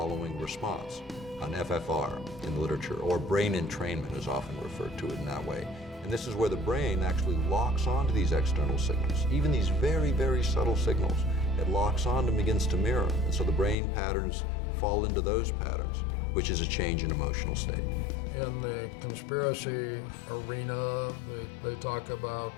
response, an FFR in the literature, or brain entrainment is often referred to it in that way. And this is where the brain actually locks onto these external signals, even these very, very subtle signals. It locks on and begins to mirror. And so the brain patterns fall into those patterns, which is a change in emotional state. In the conspiracy arena, they talk about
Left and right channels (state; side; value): drops out; right; at 13.8 s